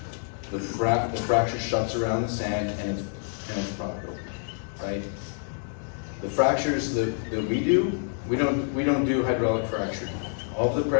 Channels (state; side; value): silent; right; 60 dB below the other